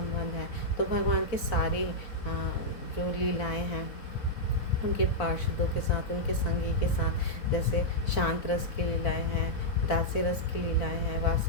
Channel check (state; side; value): late; right; 4.0 ms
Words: है। तो भगवान के सारी जो लीलाएं हैं उनके पार्षदों के साथ, उनके संगी के साथ, जैसे शांत रस की लीलाएं हैं, दास्य रस की लीलाएं हैं,